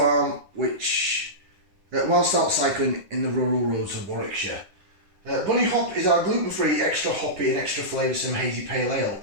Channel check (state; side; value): late; left; 10 ms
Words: which, whilst out cycling in the rural roads of Warwickshire. Bunny Hop is our gluten-free, extra hoppy and extra flavoursome hazy pale ale,